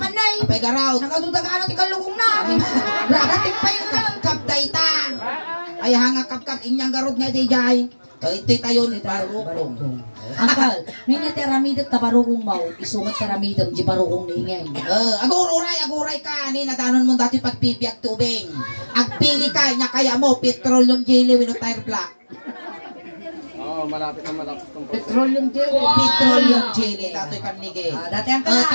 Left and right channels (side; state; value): both; inverted; correlation -1.00